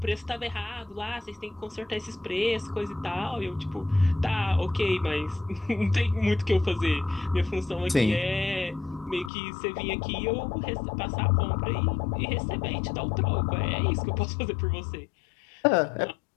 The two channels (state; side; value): drops out; right; at 9.3 s